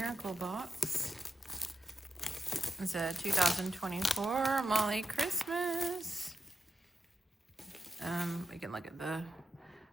Box. It's a 2024 Molly Christmas. We can look at the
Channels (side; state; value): both; normal; correlation 0.87